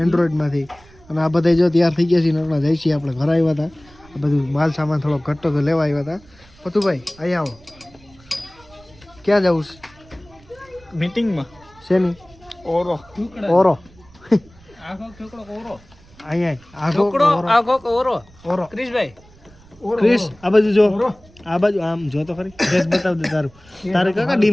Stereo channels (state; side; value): noise; right; rumble, 26 dB below the sound